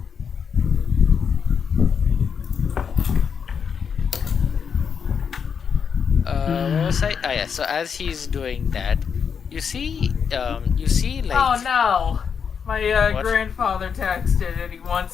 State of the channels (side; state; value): right; quieter; 6.7 dB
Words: What was I? Oh yeah. So as he's doing that, you see like. Oh no! My What? grandfather texted and he